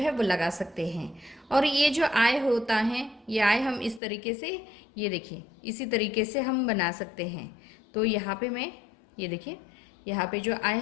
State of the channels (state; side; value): drops out; right; at 4.0 s